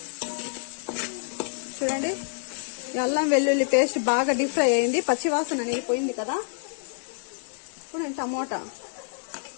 చూడండి, అల్లం వెల్లుల్లి పేస్ట్ బాగా డీప్ ఫ్రై అయింది, పచ్చివాసన అనేది పోయింది కదా. ఇప్పుడు నేను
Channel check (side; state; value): right; silent; digital silence